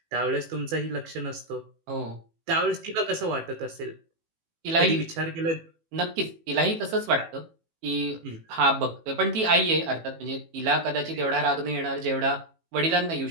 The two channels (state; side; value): late; left; 18 ms